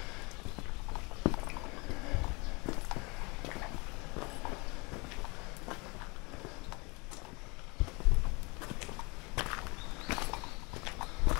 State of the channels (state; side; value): quieter; right; 27.9 dB